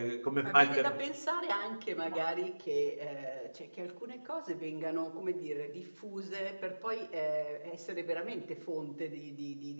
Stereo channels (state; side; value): inverted; both; correlation -1.00